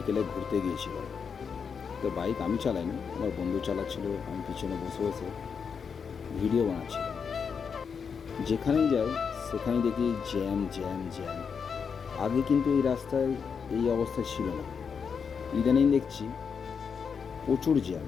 ঘুরতে গিয়েছিলাম। তো বাইক আমি চালাইনি, আমার বন্ধু চালাচ্ছিল, আমি পিছনে বসে বসে ভিডিও বানাচ্ছিলাম। যেখানেই যাই সেখানেই দেখি জ্যাম জ্যাম জ্যাম। আগে কিন্তু এই রাস্তায় এই অবস্থা ছিল না, ইদানিং দেখছি প্রচুর জ্যাম।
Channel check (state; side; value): quieter; right; 6.3 dB